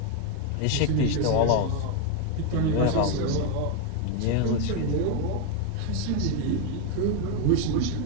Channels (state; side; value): different; both; correlation 0.01